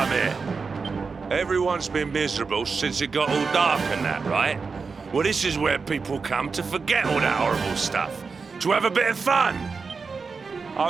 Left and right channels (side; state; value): left; quieter; 4.8 dB